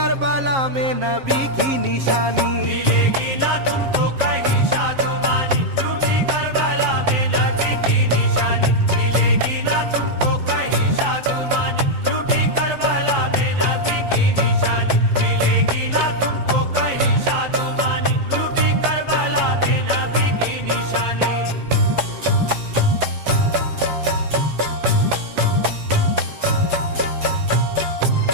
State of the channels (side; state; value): left; late; 7.5 ms